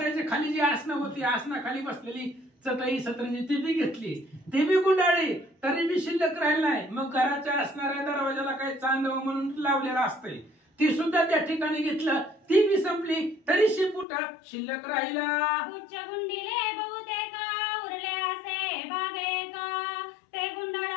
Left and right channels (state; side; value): drops out; right; at 14.1 s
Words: खाली जी आसनं होती आसना खाली बसलेली चटई सतरंजी ती बी घेतली, ती बी गुंडाळली तरी बी शिल्लक राहिला नाही. मग घराच्या असणाऱ्या दरवाजाला काही चांदव म्हणून लावलेला असतंय ती सुद्धा त्या ठिकाणी घेतलं, ती बी संपली तरी शेपूट शिल्लक राहिला. पुच्छ गुंडीले बहुतेक उरले असे बागेक ते